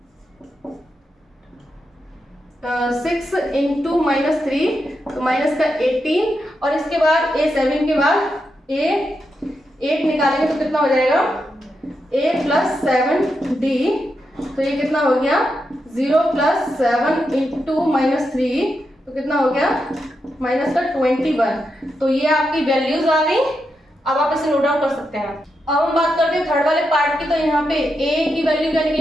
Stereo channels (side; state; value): both; normal; correlation 0.85